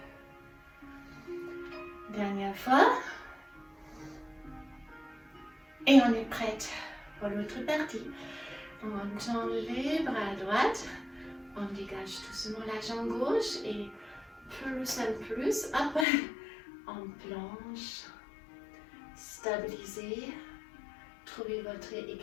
Dernière fois. Et on est prête pour l'autre partie. On tend les bras à droite. On dégage doucement la jambe gauche et plus en plus, hop, on plonge. Stabilisez. Trouvez votre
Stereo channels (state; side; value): drops out; right; at 16.1 s